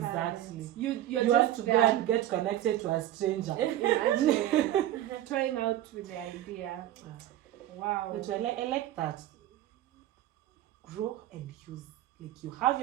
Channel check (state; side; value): quieter; left; 13.3 dB